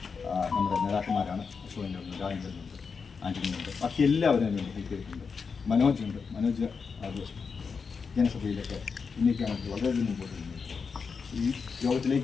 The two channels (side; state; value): right; quieter; 5.4 dB